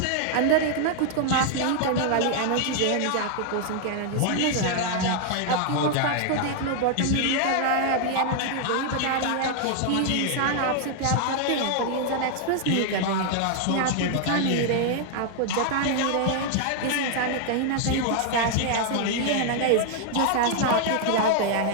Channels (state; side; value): different; both; correlation 0.00